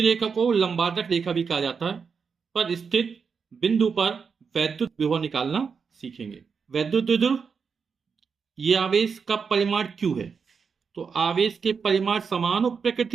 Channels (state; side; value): quieter; left; 5.8 dB